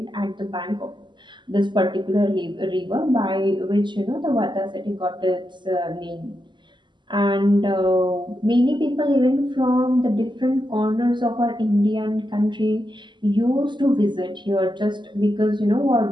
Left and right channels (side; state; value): left; late; 0.22 ms